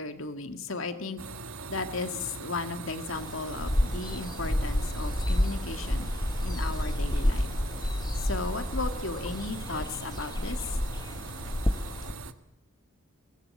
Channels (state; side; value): normal; both; correlation 0.72